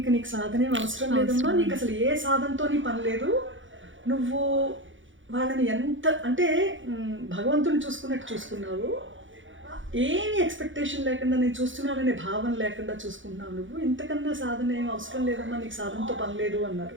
నీకు సాధనేం అవసరం లేదమ్మా, నీకు అసలు ఏ సాధనతో నీ పని లేదు, నువ్వు వాళ్ళని ఎంత అంటే భగవంతుని చూసుకున్నట్టు చూసుకున్నావు, ఏమి ఎక్స్పెక్టేషన్ లేకుండా నేను చూస్తున్నాననే భావన లేకుండా చూసుకుంటున్నావు, నువ్వు ఇంతకన్నా సాధన ఏం అవసరం లేదమ్మా, నీకు సాధనతో పని లేదు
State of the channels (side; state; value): left; late; 0.56 ms